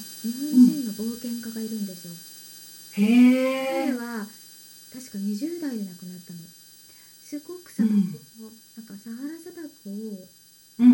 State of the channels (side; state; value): both; identical; correlation 1.00